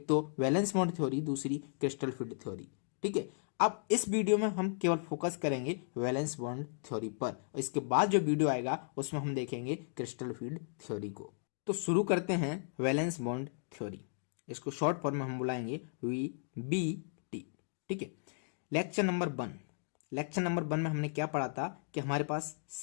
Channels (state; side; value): silent; right; digital silence